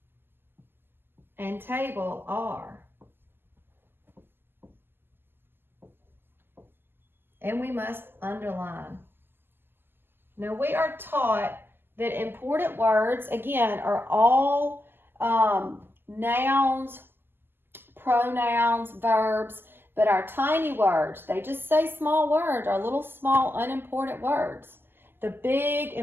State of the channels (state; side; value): late; left; 0.10 ms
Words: and table are. And we must underline. Now we are taught that important words, again, are all nouns, pronouns, verbs, but our tiny words, they just say small words, are little small unimportant words. The big